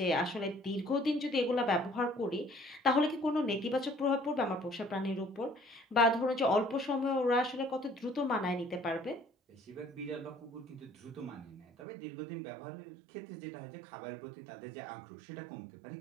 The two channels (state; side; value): drops out; left; at 11.9 s